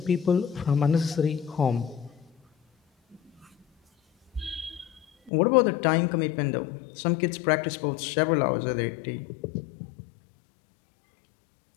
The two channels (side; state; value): right; drops out; at 5.3 s